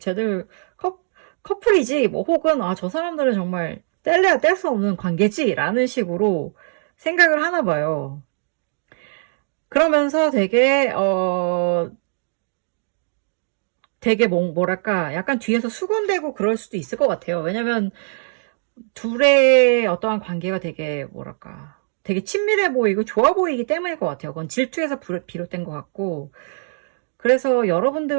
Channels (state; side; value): silent; left; digital silence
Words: 커플이지, 혹은, 저 사람들은 정말 뗄래야 뗄 수 없는 관계지, 라는 식으로 생각을 하나 봐요. 그러면서 되게 뭐랄까, 약간 뒤에서 수군대고 그럴 수도 있을 것 같아요. 왜냐면, 둘의 어떠한 관계가 되게 되게 친밀해 보이고 좋아 보이기 때문일 것 같아요. 그건 질투에서 비롯된 것 같고, 그래서